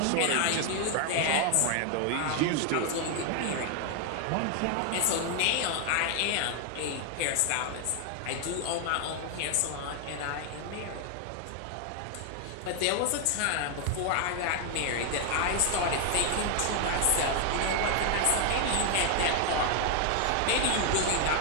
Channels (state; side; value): different; both; correlation 0.00